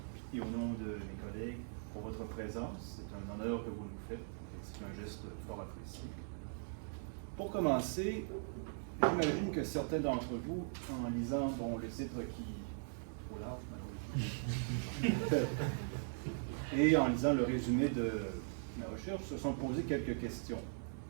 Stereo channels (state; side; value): silent; left; digital silence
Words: et au nom de mes collègues pour votre présence. C'est un honneur que vous nous faites et c'est un geste fort apprécié. Pour commencer, j'imagine que certains d'entre vous, en lisant le titre qui est trop large, malheureusement, et en lisant le résumé de ma recherche, se sont posé quelques questions.